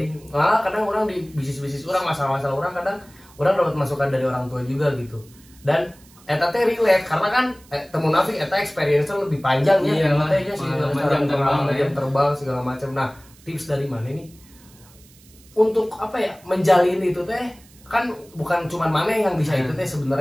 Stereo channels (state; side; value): noise; right; hiss, 26 dB below the sound